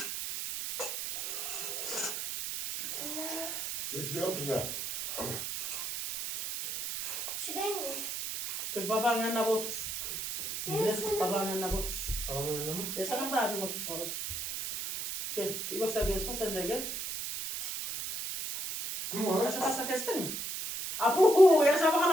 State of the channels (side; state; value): right; noise; hiss, 4 dB below the sound